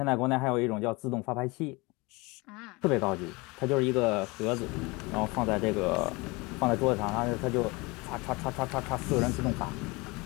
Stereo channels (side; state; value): right; quieter; 25.3 dB